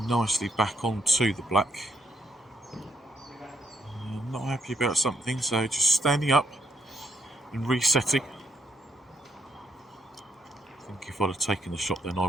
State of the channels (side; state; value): both; normal; correlation 0.75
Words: nicely back onto the black. I'm not happy about something, so just standing up and resetting. I think if I'd have taken the shot then